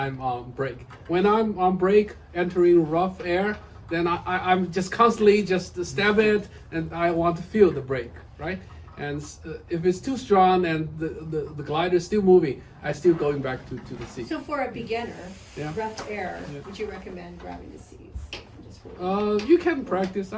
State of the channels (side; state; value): both; identical; correlation 1.00